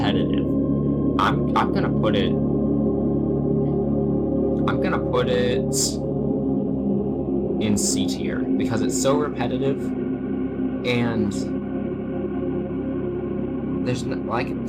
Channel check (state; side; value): identical; both; correlation 1.00